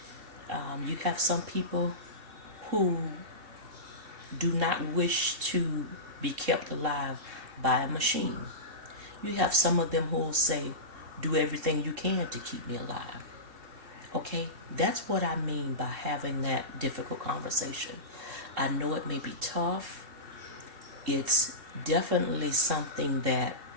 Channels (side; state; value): left; late; 2.7 ms